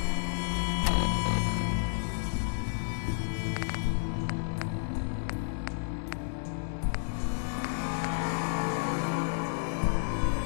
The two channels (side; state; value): right; silent; digital silence